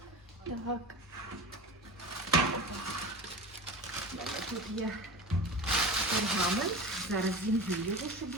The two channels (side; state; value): both; normal; correlation 0.31